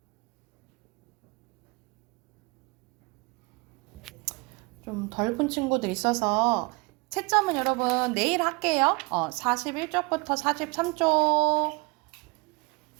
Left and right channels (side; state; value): left; quieter; 27.5 dB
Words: 좀 덜 푼 친구들 있어서 채점은 여러분 내일 할게요. 41쪽부터 43쪽